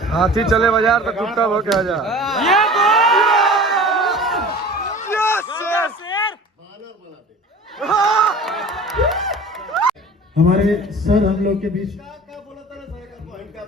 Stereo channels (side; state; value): both; normal; correlation 0.41